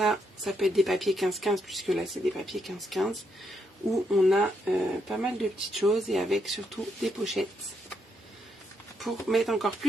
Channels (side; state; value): both; normal; correlation 0.78